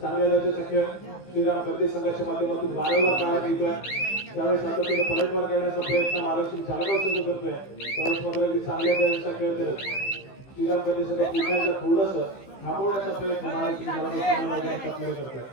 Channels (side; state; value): right; late; 15 ms